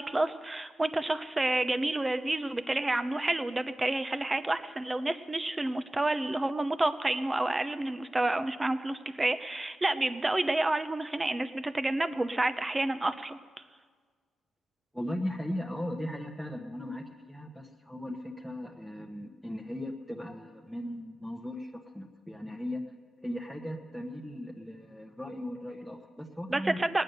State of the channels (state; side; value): normal; both; correlation 0.97